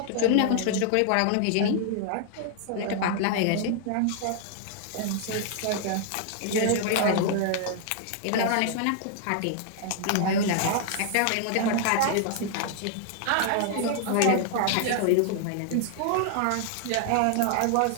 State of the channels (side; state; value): both; different; correlation 0.00